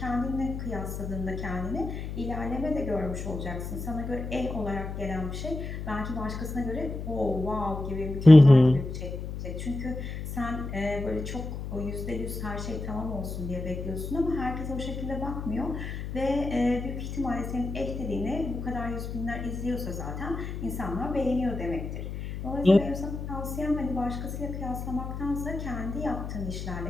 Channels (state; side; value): noise; left; hum, 6 dB below the sound